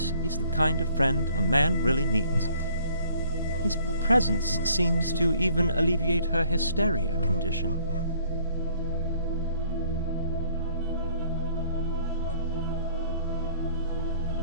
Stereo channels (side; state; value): both; inverted; correlation -0.60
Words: is the kind of friend a man really needs. His presence seems to even alleviate her hysteria condition.